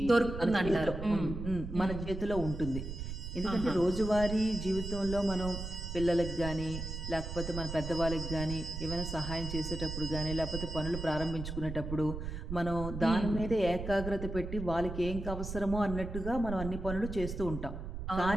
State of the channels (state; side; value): noise; right; rumble, 7 dB below the sound